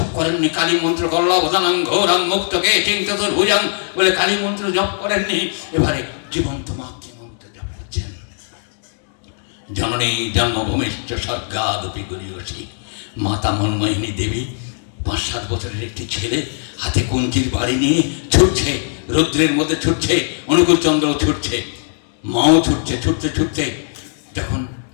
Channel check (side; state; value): right; silent; digital silence